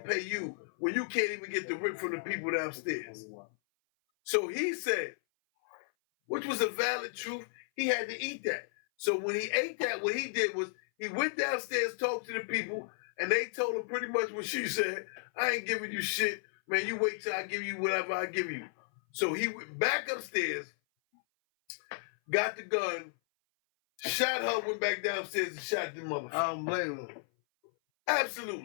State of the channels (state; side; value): silent; right; 55 dB below the other